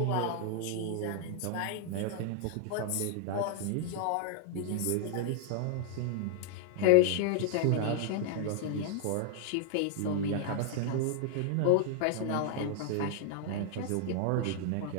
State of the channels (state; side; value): different; both; correlation -0.01